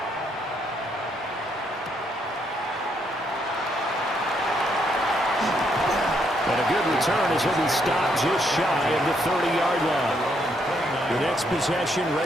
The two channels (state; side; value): normal; both; correlation 0.74